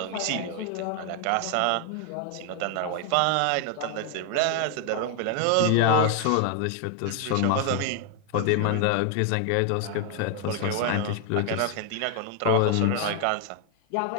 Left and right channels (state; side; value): different; both; correlation 0.01